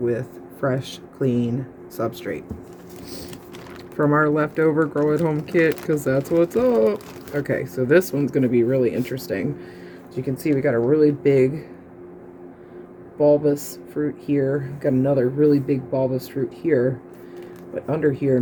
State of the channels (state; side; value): identical; both; correlation 1.00